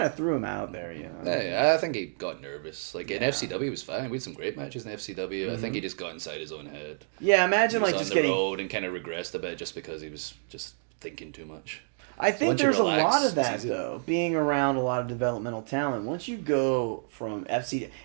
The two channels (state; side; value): silent; left; digital silence